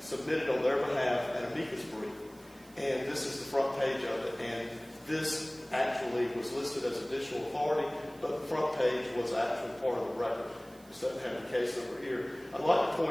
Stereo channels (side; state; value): right; noise; hiss, 25 dB below the sound